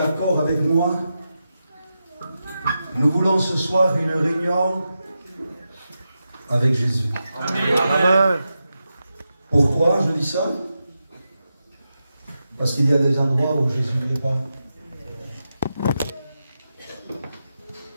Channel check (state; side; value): inverted; both; correlation -0.89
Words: avec moi? Nous voulons ce soir une réunion avec Jésus. Amen. Amen. Pourquoi je dis ça? Parce qu'il y a des endroits où Jésus n'est pas.